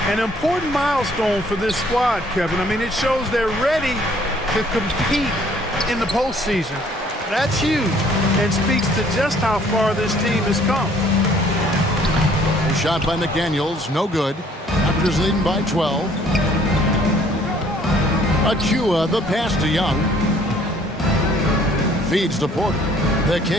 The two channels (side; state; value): both; normal; correlation 0.59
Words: An important milestone for this squad, Kevin. I mean, it shows they're ready to compete in the postseason. That's huge and speaks to just how far this team has come. A shot by McDaniels, no good. Raptors leading by 12. Achua, the pass to Young. Feeds to Porter. The